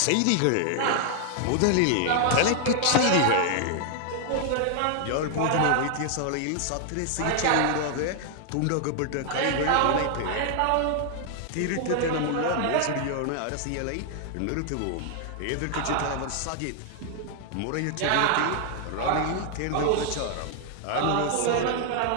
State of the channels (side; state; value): both; different; correlation 0.00